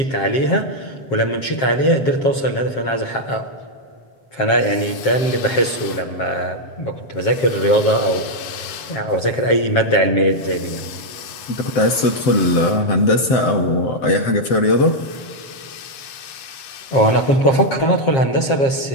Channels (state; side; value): late; right; 7.5 ms